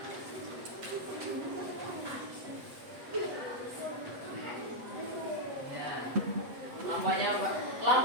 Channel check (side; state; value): left; late; 7.9 ms